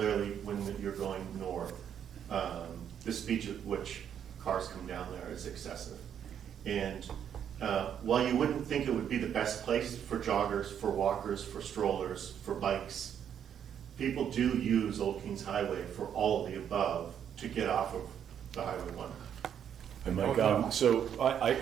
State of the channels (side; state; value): left; quieter; 8.9 dB